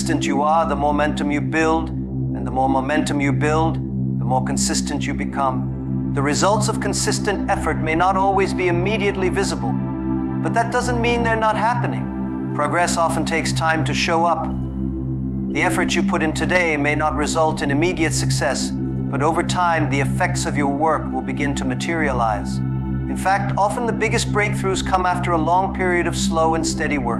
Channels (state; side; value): identical; both; correlation 1.00